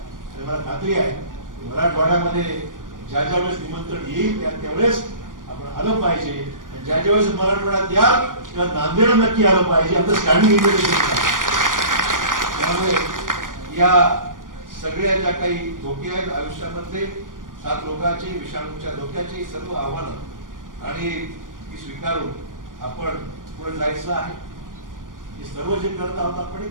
आणि मला खात्री आहे मराठवाड्यामध्ये ज्या वेळेस निमंत्रण येईल त्यावेळेस आपण आलं पाहिजे. ज्या वेळेस मराठवाड्यात याल तेव्हा नांदेड नक्की आलं पाहिजे. आपलं स्टँडिंग इन्व्हिटेशन आहे. त्यामुळे या सगळ्या ज्या काही धोके आहेत आयुष्यामध्ये 7 रोगाचे विषाणूच्या धोक्याचे सर्व आव्हानं आणि ती स्वीकारून आपण पुढे जायचं आहे. हे सर्व जे करत आहोत आपण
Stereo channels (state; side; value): late; left; 0.89 ms